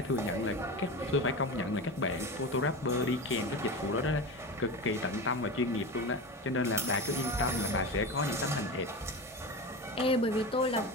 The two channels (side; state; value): both; normal; correlation 0.25